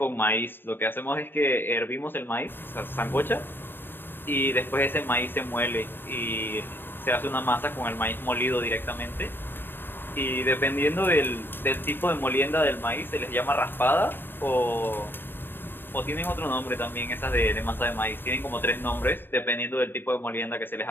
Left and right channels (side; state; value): right; late; 0.097 ms